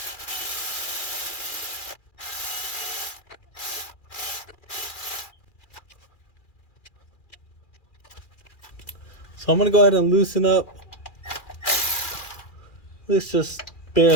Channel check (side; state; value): right; late; 2.4 ms